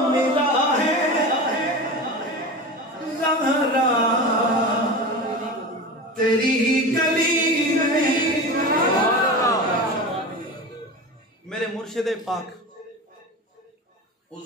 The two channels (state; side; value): normal; both; correlation 0.28